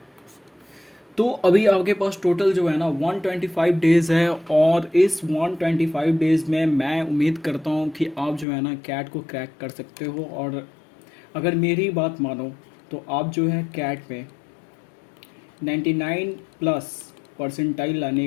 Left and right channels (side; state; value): right; drops out; at 8.5 s